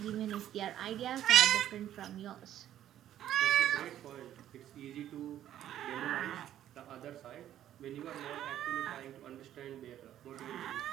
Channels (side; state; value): left; quieter; 11.7 dB